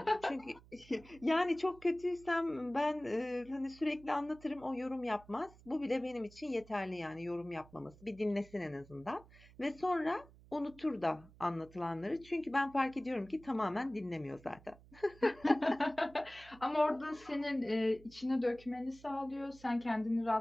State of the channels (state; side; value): noise; right; hum, 23 dB below the sound